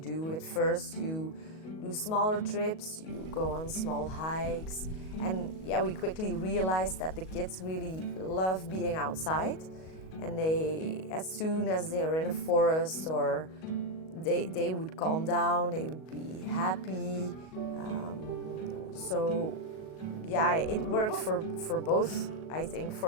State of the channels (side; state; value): right; late; 38 ms